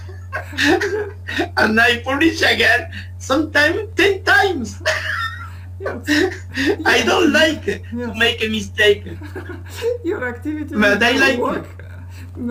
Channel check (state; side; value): identical; both; correlation 1.00